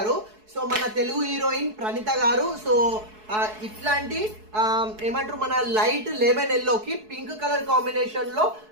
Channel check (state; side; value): late; left; 4.7 ms